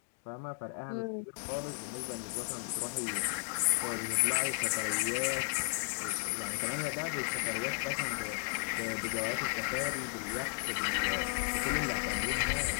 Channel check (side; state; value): right; silent; digital silence